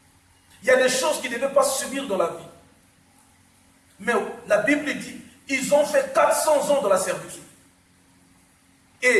Il y a des choses qu'ils ne devaient pas subir dans la vie. Mais la Bible dit, ils ont fait 400 ans de la servitude.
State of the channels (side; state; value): both; identical; correlation 1.00